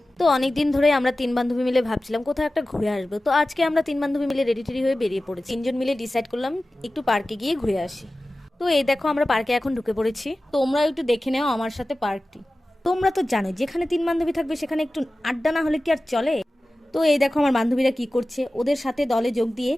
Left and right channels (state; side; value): normal; both; correlation 0.96